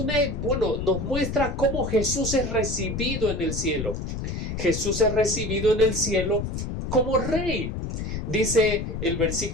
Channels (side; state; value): left; noise; rumble, 4 dB below the sound